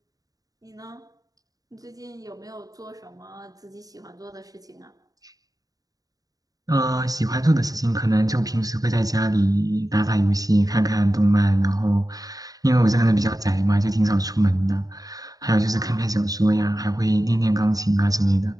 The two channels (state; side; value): late; left; 0.18 ms